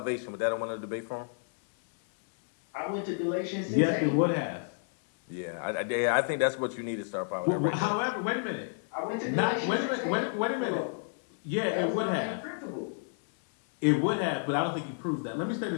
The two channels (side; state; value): right; silent; 58 dB below the other